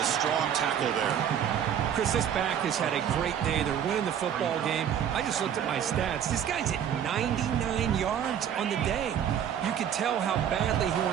a strong tackle there. Chris, this back has had a great day. They're winning the football game. I just looked at my stats. This guy's at 99 yards on the day. You can tell how badly he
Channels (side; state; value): left; quieter; 9.1 dB